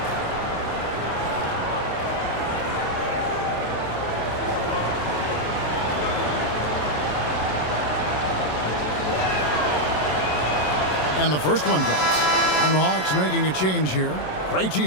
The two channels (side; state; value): right; late; 27 ms